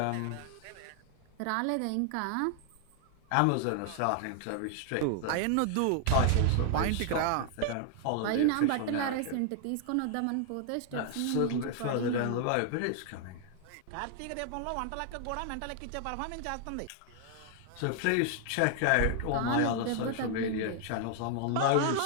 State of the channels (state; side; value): different; both; correlation 0.00